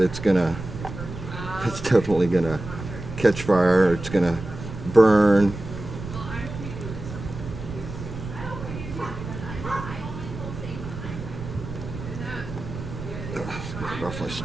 definitely gonna catch fire. It's gonna burn. Get it off my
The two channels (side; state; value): right; noise; rumble, 9 dB below the sound